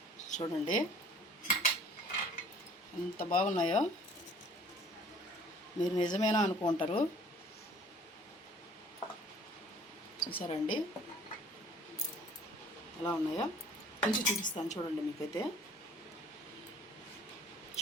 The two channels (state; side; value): normal; both; correlation 0.53